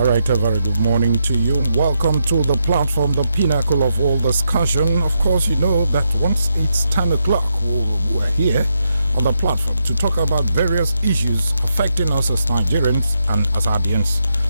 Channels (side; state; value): both; inverted; correlation -0.82